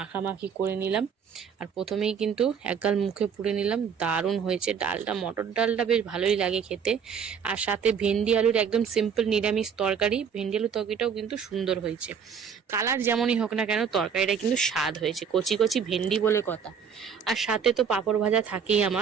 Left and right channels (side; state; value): left; quieter; 6.9 dB